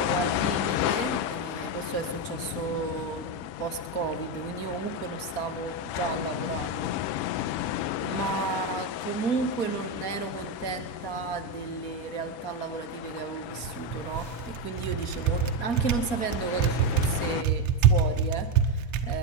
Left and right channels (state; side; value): late; right; 4.2 ms